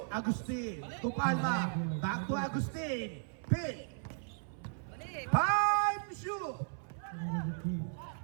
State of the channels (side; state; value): left; silent; 54 dB below the other